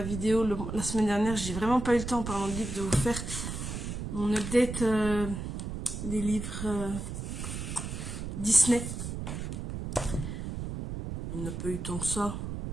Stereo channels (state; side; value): noise; right; rumble, 6 dB below the sound